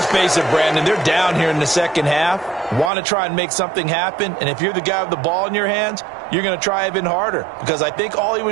face it, Brandon, they're down here in the second half. Want to try and make something happen, and if you're the guy with the ball in your hands, you're going to try even harder, because I think all he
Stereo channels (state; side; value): drops out; left; at 2.9 s